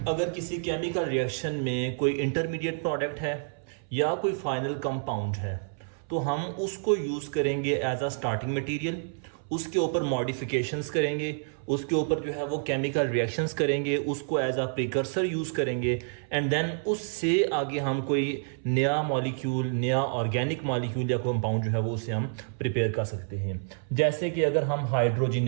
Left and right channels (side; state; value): left; silent; 59 dB below the other